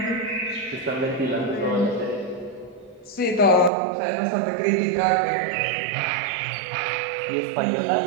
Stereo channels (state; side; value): drops out; left; at 3.7 s